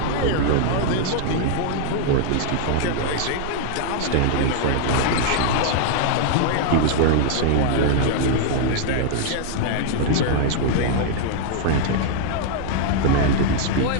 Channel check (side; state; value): both; different; correlation 0.00